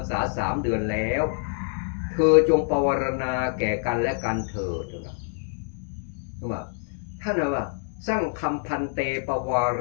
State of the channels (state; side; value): silent; right; 61 dB below the other